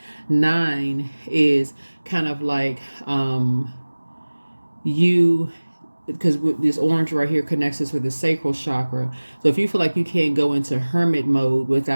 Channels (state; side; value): inverted; both; correlation -1.00